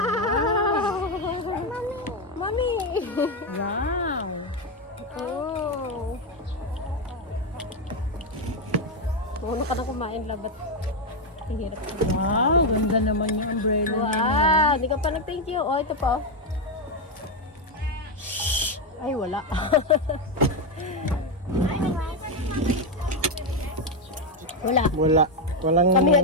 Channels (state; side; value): normal; both; correlation 0.06